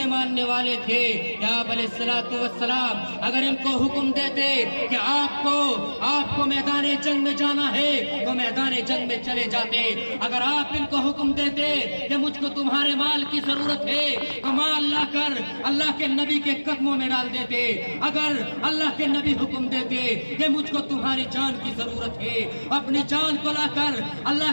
ماننے والے تھے، یا آپ علیہ الصلوۃ والسلام اگر ان کو حکم دیتے کہ آپ کو میدان جنگ میں جانا ہے تو میدان جنگ میں چلے جاتے، اگر آپ ان کو حکم دیتے کہ مجھ کو تمہارے مال کی ضرورت ہے تو مال لا کر اللہ کے نبی کے قدموں میں ڈال دیتے، اگر اللہ کے نبی حکم دیتے کہ مجھ کو تمہاری جان کی ضرورت ہے اپنی جان کو لا کر اللہ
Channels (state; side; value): inverted; both; correlation -1.00